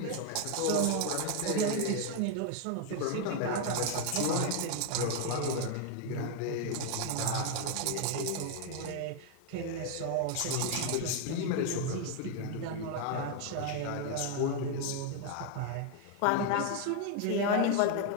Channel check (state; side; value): different; both; correlation 0.01